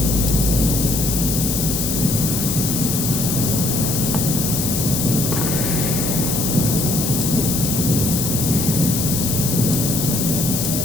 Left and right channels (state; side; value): noise; left; hiss, 1 dB below the sound